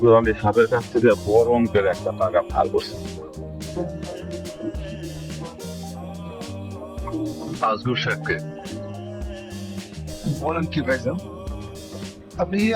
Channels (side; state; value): both; identical; correlation 1.00